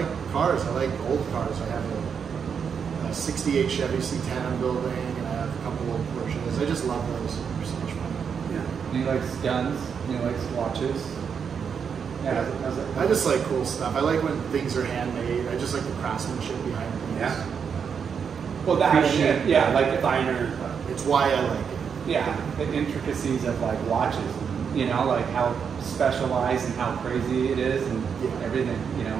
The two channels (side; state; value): left; quieter; 6.8 dB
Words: cars. I like old cars. I have a 68 Chevy C10 I'm building, and I have a couple old Porsches. I just love those. They're so much fun. Yeah. He likes guns. He likes watches. Yeah. I just like cool stuff. I like when things are handmade. I just like the craftsmanship behind things. Yeah. Well, like the finer. It's why I like it. Yeah, the intricacies of like watches. Like how specialized and how crazy it is, and everything.